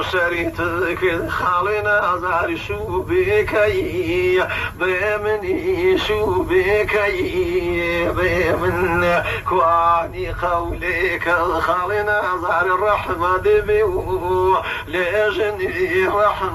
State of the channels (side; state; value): both; identical; correlation 1.00